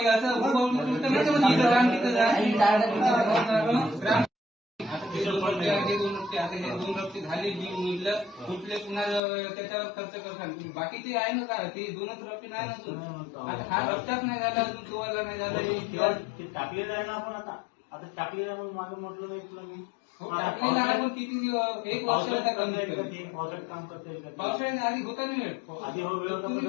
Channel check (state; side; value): drops out; right; at 9.2 s